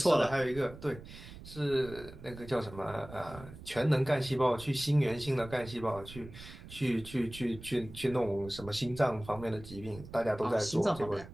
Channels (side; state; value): right; noise; rumble, 15 dB below the sound